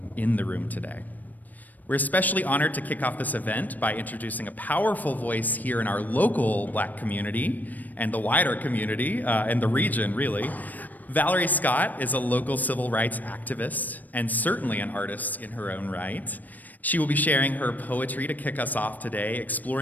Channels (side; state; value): right; late; 0.083 ms